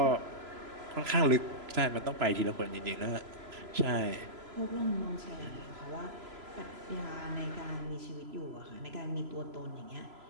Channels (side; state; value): left; late; 3.0 ms